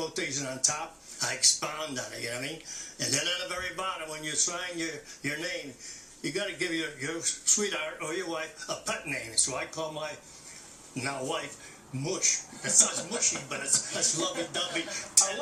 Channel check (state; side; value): normal; both; correlation 0.97